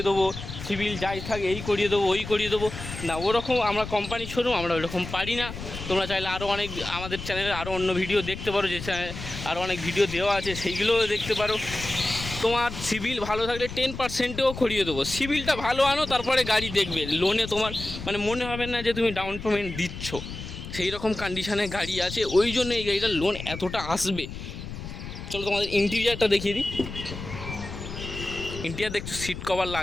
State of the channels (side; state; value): left; noise; rumble, 10 dB below the sound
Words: দেবো, সিভিল যাই থাকে এই করিয়ে দেবো ওই করিয়ে দেবো, না ওরকম আমরা কোম্পানি শোরুম, আমরা ওরকম পারি না। তোমরা চাইলে আরও অনেক আমাদের চ্যানেলে আরও অন্য ভিডিও দেখতে পারো, যে চ্যানেলে আরও অনেক ভিডিও দেওয়া আছে সেইগুলোও দেখতে পারো। তোমার সিভিল ভালো থাকলে 10%ও করিয়ে দেবো। সিভিলটা ভালো আনো, তারপরে গাড়ি দেখবে, লোনে তোমার মানে মনে হবে না যে তুমি ডাউন পেমেন্ট দিচ্ছ, সেই রকম কন্ডিশানে গাড়ি আছে, ওই জন্য এই গাড়িটার লোন এতটা আসবে। চলো তোমাদের ইন্টেরিয়ারটা দেখিয়ে দিই। ইন্টেরিয়ার দেখছো, সিট কভার